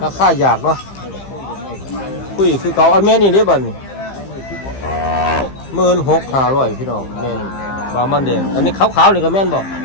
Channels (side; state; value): right; late; 15 ms